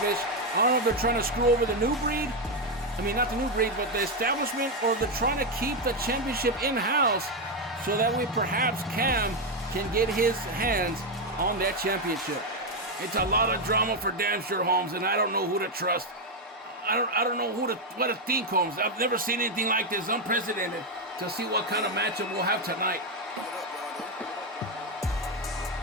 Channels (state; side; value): normal; both; correlation 0.06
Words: I don't know if they're trying to screw over the New Breed. I mean, not the New Breed, but the establishment, or they're trying to keep the championship in-house so that way perhaps Cam can get his hands on that championship. It's a lot of drama for damn sure, Holmes, and I don't know who to trust. I don't know what to think, Holmes. I've never seen anything like this, unprecedented, to see what kind of matchup we'll have tonight.